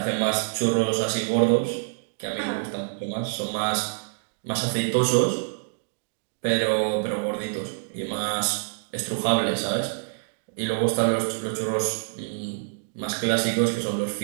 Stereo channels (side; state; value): left; silent; digital silence